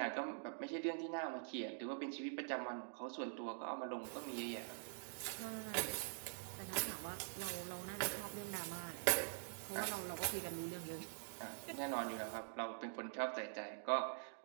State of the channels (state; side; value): silent; left; digital silence